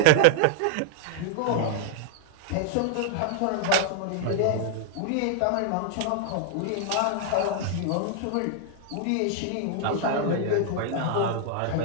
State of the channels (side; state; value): both; different; correlation 0.00